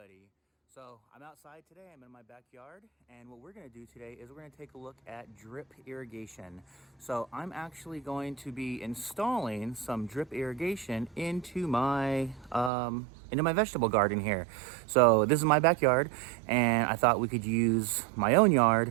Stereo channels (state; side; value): drops out; left; at 12.7 s